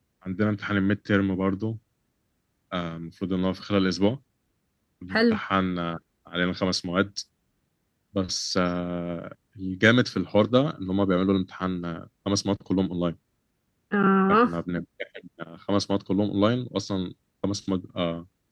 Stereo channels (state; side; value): identical; both; correlation 1.00